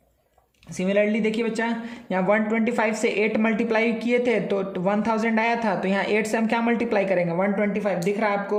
सिमिलरली देखिए बच्चा, यहाँ 125 से 8 मल्टीप्लाई किए थे तो 1000 आया था, तो यहाँ 8 से हम क्या मल्टीप्लाई करेंगे, 125 दिख रहा है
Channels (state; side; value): identical; both; correlation 1.00